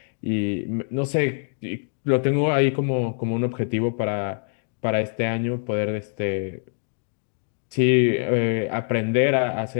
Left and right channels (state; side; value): silent; right; 62 dB below the other